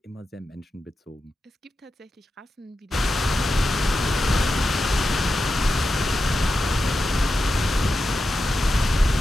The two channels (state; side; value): normal; both; correlation 0.90